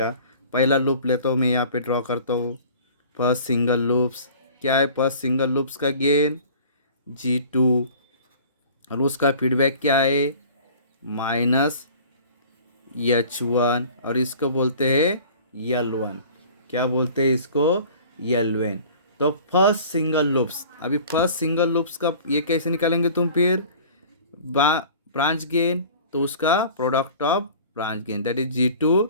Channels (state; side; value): inverted; both; correlation -0.45